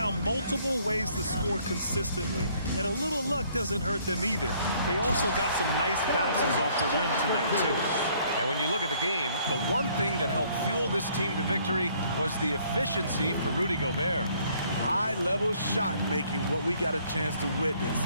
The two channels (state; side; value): inverted; both; correlation -0.63